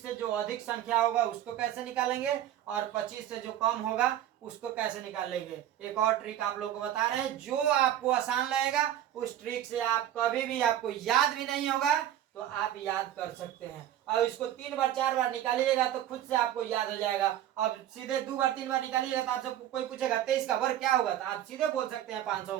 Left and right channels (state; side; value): quieter; left; 11.8 dB